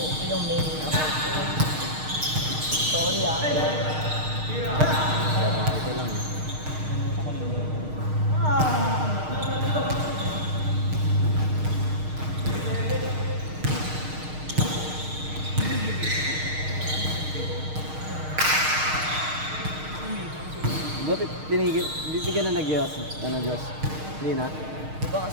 yung main account ko. Sorry ah. Babae ko lang. Ba't tinigil? Hindi ka na nag-Diyos? Ano, Diyos? Hindi na? Di ba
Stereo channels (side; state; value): left; late; 6.5 ms